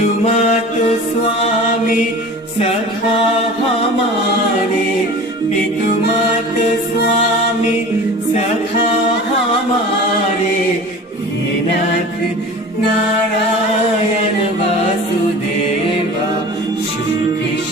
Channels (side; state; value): both; normal; correlation 0.38